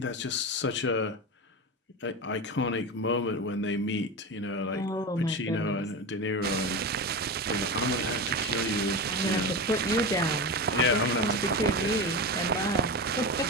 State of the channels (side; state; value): both; normal; correlation 0.22